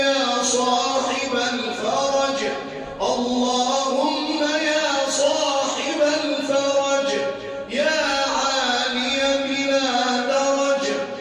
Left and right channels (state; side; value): identical; both; correlation 1.00